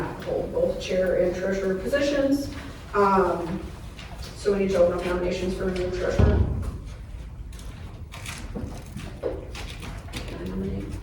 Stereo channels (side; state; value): both; identical; correlation 1.00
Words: hold both chair and treasurer positions. So we need to open up nominations for a new treasurer. Can I nominate?